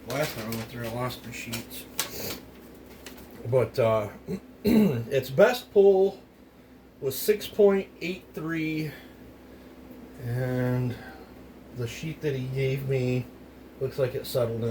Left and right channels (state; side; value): identical; both; correlation 1.00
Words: Last time I went through, I lost my sheets. But its best pull was 6.83, and the sheet that he gave me looks like it settled